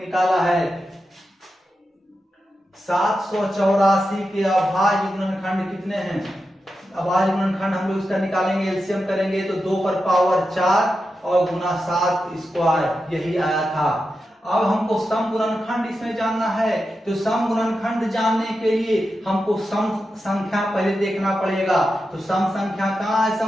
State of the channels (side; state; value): both; normal; correlation 0.89